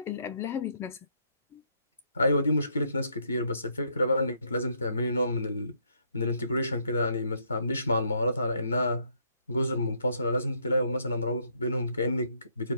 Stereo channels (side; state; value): both; inverted; correlation -0.72